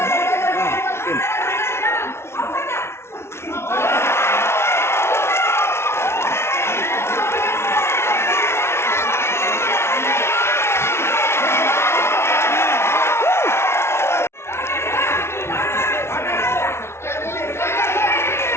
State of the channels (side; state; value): right; late; 0.12 ms